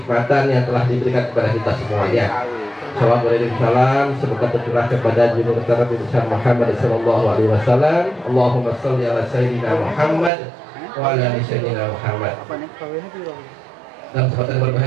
yang telah diberikan kepada kita semuanya. Salam, semoga tercurah kepada junjungan kita Nabi besar Muhammad sallallahu alaihi wasallam. Allahumma shalli ala sayyidina Muhammad wa ala ali sayyidina Muhammad. Dalam kesempatan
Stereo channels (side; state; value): left; drops out; at 10.3 s